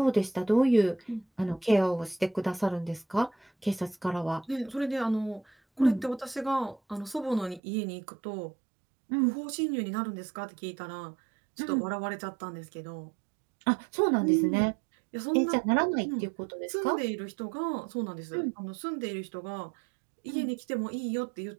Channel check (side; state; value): left; drops out; at 7.6 s